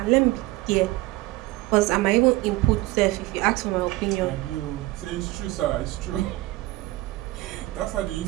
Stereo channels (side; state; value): left; quieter; 19.2 dB